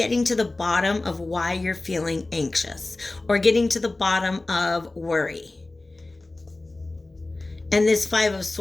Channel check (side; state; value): right; quieter; 3.0 dB